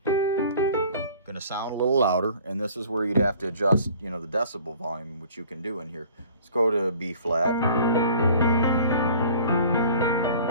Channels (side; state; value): both; inverted; correlation -0.50